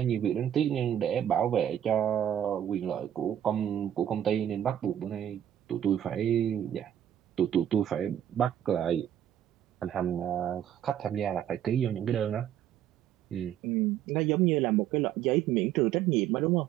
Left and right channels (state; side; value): quieter; left; 10.5 dB